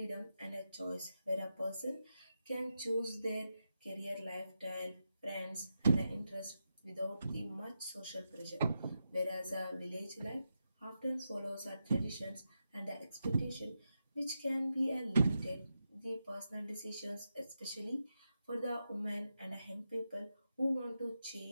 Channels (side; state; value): both; inverted; correlation -0.87